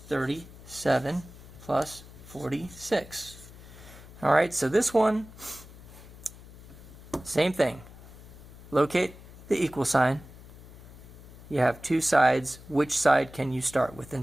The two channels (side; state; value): left; noise; hum, 18 dB below the sound